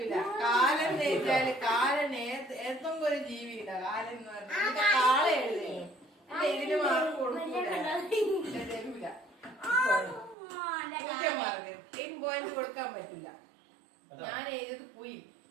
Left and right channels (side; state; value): left; drops out; at 10.4 s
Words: കാലൻ എഴുതിയാല് കാലൻ ഏതെങ്കിലും ഒരു ജീവിയില്ല. കാലൻ എന്ന് പറഞ്ഞാൽ കാള എഴുതി. ഇതിന് മാർക്ക് കൊടുക്കൂല, തരൂല. മാർക്ക് 10 പോയിന്റ് കൊടുക്കാൻ പറ്റില്ല. ഞാൻ എഴുതിയത് പുയി.